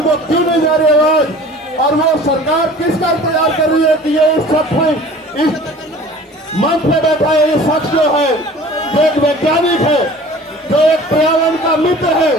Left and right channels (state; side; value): normal; both; correlation 0.45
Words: को क्यों नहीं जा रही आवाज, और वो सरकार किसका इंतजार कर रही है कि ये इस मंच पे बैठा है, ये शख्स जो है, जो एक वैज्ञानिक है, जो एक पर्यावरण का मित्र है,